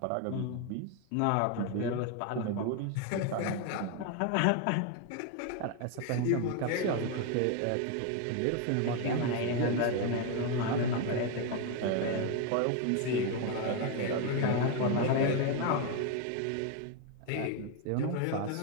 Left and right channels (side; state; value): both; different; correlation 0.01